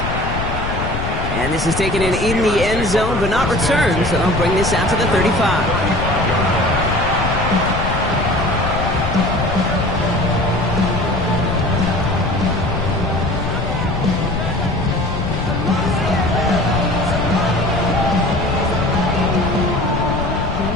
And this is taken in the end zone, but not returned, so they'll bring this out to the 35.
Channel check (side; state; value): left; noise; rumble, 4 dB below the sound